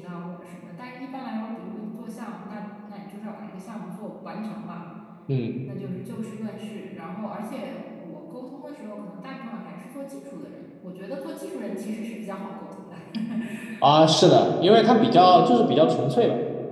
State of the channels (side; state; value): both; identical; correlation 1.00